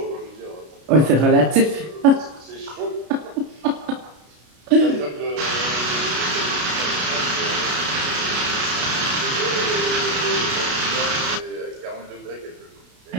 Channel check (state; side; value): late; left; 33 ms